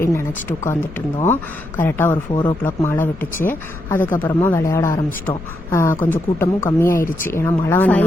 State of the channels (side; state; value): left; noise; rumble, 15 dB below the sound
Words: நினச்சிட்டு உட்காந்துட்டு இருந்தோம். கரெக்டாக ஒரு 4 o'clock மழை விட்டுச்சு. அதுக்கப்புறமா விளையாட ஆரம்பிச்சிட்டோம். கொஞ்சம் கூட்டமும் கம்மியாயிருச்சு. ஏன்னா மழை